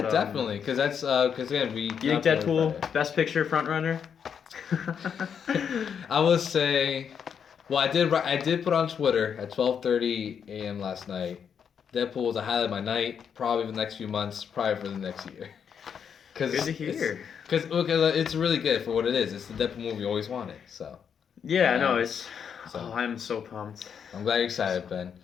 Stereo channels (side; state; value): right; quieter; 7.5 dB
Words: but, definitely, because that's because again we. You think Deadpool Best Picture front runner? I would say, well, I did put on Twitter at 12:30 a.m. last night. Deadpool was a highlight of my night, probably for the next few months, probably for the next year. Good to hear. Because it's really good for what it is. It's the Deadpool movie you always wanted. So. Yeah, no, it's. So, I'm so pumped. I'm glad you're excited, Ben.